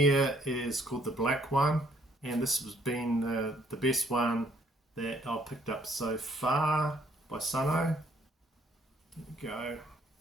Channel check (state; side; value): normal; both; correlation 0.66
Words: is called the black one, and this has been the best one that I've picked up so far by Sono. There we go.